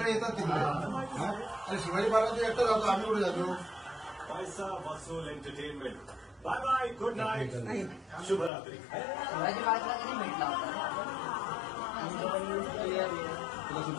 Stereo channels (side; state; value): right; drops out; at 8.5 s